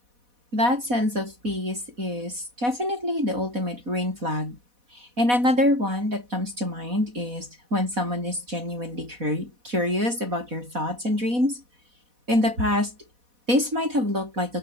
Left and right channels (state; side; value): late; left; 4.1 ms